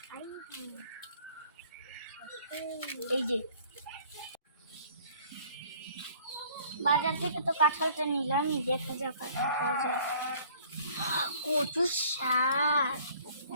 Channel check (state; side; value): inverted; both; correlation -0.56